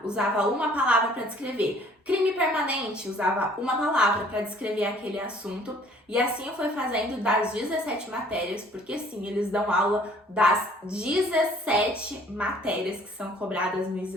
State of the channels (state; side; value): normal; both; correlation 0.56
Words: usava uma palavra para descrever. Crime permanente, usava uma palavra para descrever aquele assunto. E assim eu fui fazendo das 17 matérias, porque sim, eles dão aula das 17 matérias que são cobradas no